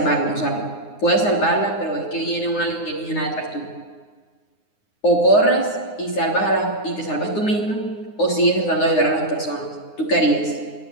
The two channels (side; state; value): right; late; 9.7 ms